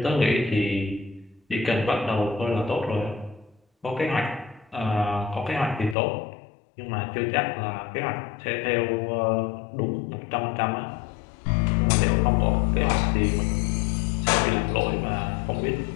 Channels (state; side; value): drops out; right; at 6.0 s